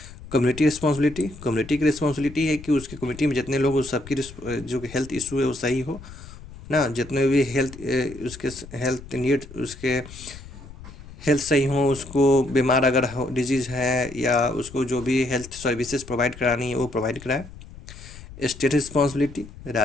कम्युनिटी रिस्पॉन्सिबिलिटी, कम्युनिटी की रिस्पॉन्सिबिलिटी है कि उसके कम्युनिटी में जितने लोग, उस सबकी जो हेल्थ इशू है वो सही हो ना, जितने भी उसके हेल्थ नीड, उसके हेल्थ सही हो, उसको बीमार अगर हो, डिजीज़ है, या उसको जो भी हेल्थ सर्विसेज प्रोवाइड करानी है वो प्रोवाइड कराए। स्टेट रिस्पॉन्सिबिलिटी,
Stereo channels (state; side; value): noise; left; rumble, 16 dB below the sound